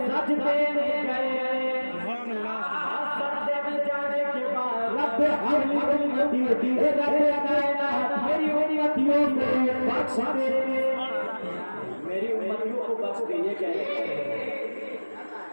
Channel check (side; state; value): both; inverted; correlation -1.00